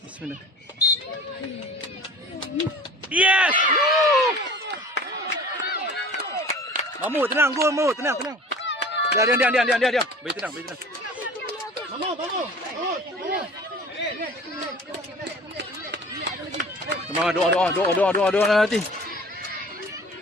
Bismillah. Yes! Mamu tenang, go Mamu, tenang. Diam. Bagi tenang. Kamu. Semangat doa nanti.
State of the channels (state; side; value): normal; both; correlation 0.43